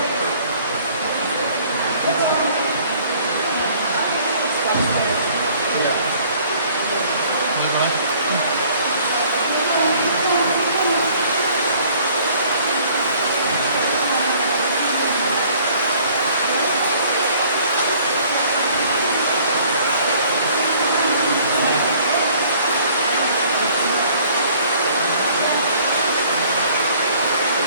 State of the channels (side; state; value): both; inverted; correlation -0.56